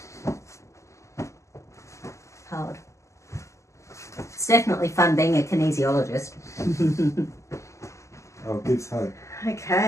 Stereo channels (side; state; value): right; late; 0.14 ms